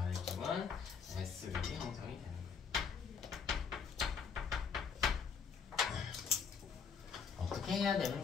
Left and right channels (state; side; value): quieter; right; 6.3 dB